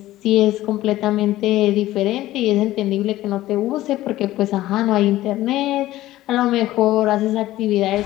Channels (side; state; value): right; quieter; 15.5 dB